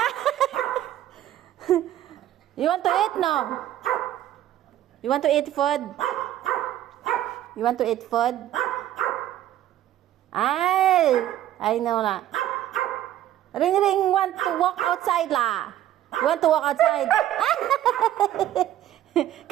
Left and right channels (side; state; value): left; quieter; 12.6 dB